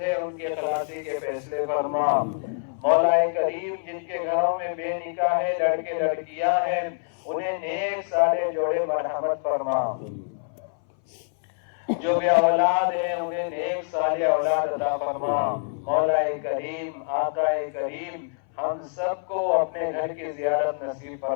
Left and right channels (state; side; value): silent; right; 60 dB below the other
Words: ہیں ان کی خلاصی کے فیصلے فرما۔ مولا کریم جن کے گھروں میں بے نکاح ہے، لڑکے لڑکیاں ہیں، انہیں نیک صالح جوڑے مرحمت فرما، جو بے اولاد ہیں انہیں نیک صالح اولاد عطا فرما۔ مولا کریم، آقا کریم، ہم سب کو اپنے گھر کی زیارت نصیب